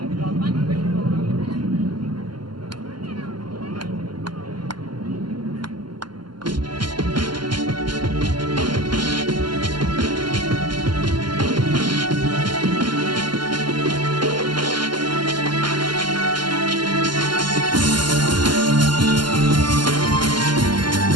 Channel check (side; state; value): left; late; 0.71 ms